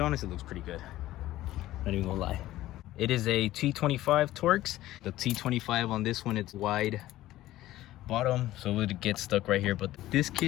honestly looks pretty good. Not even gonna lie. It is a T25 Torx. The T25 on this one, it's wide bottom, so it would get stuck right here. But this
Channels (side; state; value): right; quieter; 15.2 dB